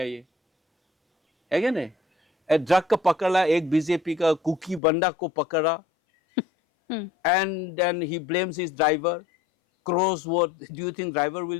ये है क्या नहीं? ड्रग का पकड़ा, एक बीजेपी का कुकी बंडा को पकड़ा, and then he blames his driver. Crows, what do you think driver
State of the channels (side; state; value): right; drops out; at 4.8 s